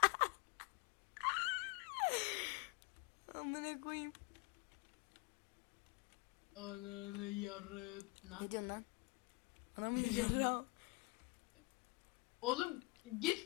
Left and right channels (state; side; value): quieter; right; 27.2 dB